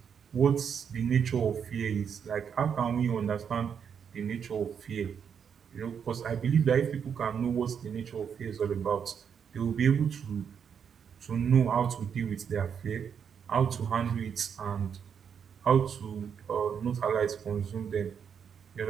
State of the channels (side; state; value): left; quieter; 7.4 dB